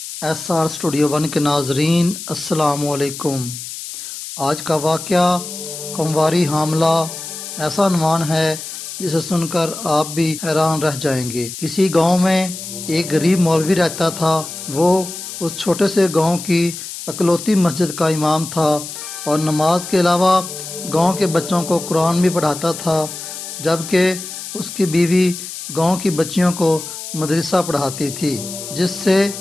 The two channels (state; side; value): noise; left; hiss, 9 dB below the sound